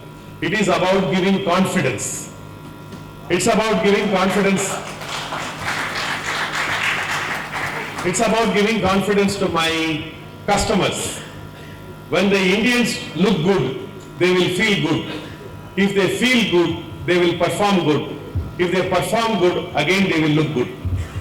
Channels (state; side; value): identical; both; correlation 1.00